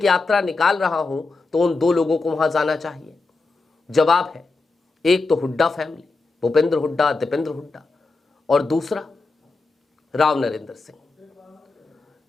यात्रा निकाल रहा हूं, तो उन दो लोगों को वहां जाना चाहिए। जवाब है, एक तो हुड्डा फैमिली, भूपेंद्र हुड्डा, दीपेंद्र हुड्डा, और दूसरा राव नरेंद्र सिंह।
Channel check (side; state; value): right; quieter; 3.7 dB